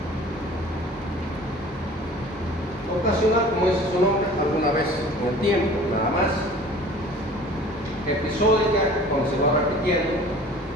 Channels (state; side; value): normal; both; correlation 0.45